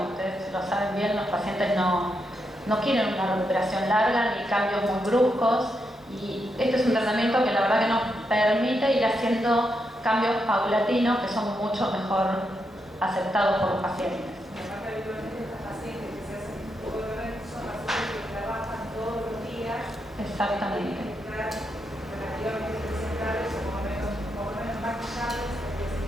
ustedes lo saben bien, los pacientes no quieren una recuperación larga ni cambios muy bruscos y este es un tratamiento que la verdad que nos permite ir haciendo cambios paulatinos que son mucho mejor aceptados por los pacientes. Exactamente.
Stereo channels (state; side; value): normal; both; correlation 0.83